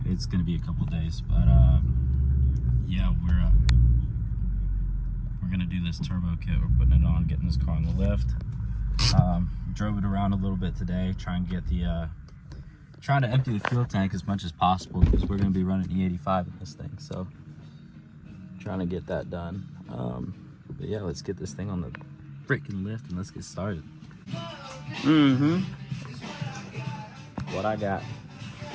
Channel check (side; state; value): both; identical; correlation 1.00